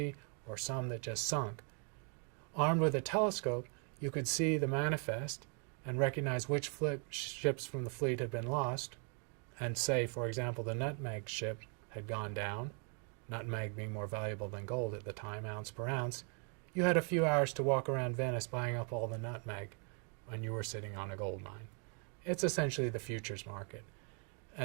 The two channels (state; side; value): quieter; left; 39.3 dB